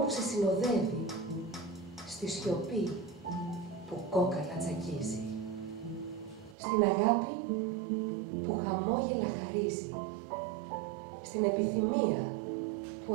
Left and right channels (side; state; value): left; drops out; at 6.6 s